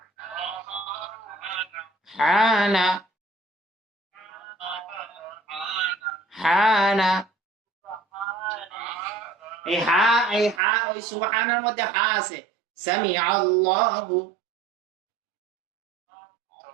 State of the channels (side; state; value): left; drops out; at 10.6 s